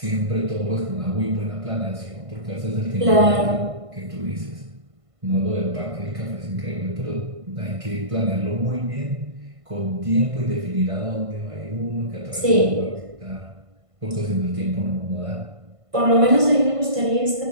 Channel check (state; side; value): late; left; 1.5 ms